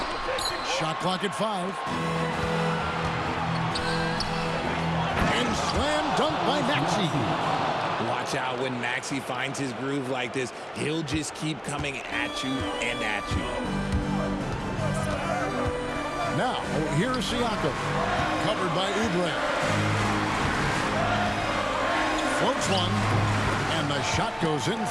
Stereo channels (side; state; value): both; identical; correlation 1.00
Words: Shot clock at 5. And slam dunk by Maxey. Watch out when Maxey finds his groove like this. He'll just keep coming at you and at you. Now, here's Siakam. Covered by Oubre. Floats one. And the shot goes in